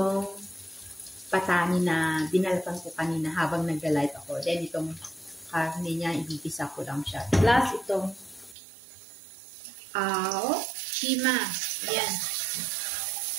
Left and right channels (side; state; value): left; drops out; at 8.6 s